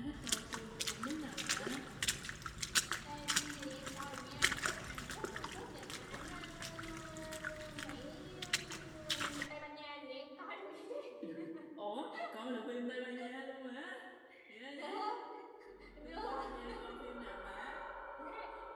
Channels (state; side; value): identical; both; correlation 1.00